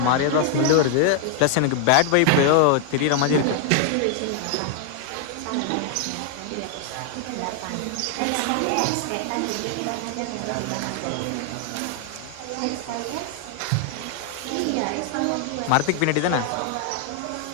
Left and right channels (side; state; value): both; different; correlation 0.00